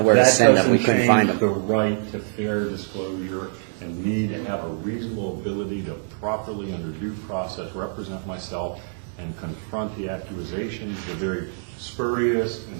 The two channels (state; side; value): silent; left; digital silence